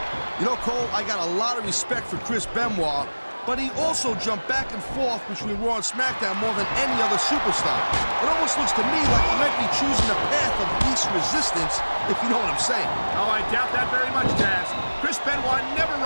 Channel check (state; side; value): inverted; both; correlation -1.00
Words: You know, Cole, I got a lot of respect for Chris Benoit, but he also jumped back and forth between Raw and SmackDown more than any other superstar. It almost looks to me like he might be choosing the path of least resistance, if you know what I'm saying. Oh, I doubt that very much, Taz. Chris Benoit never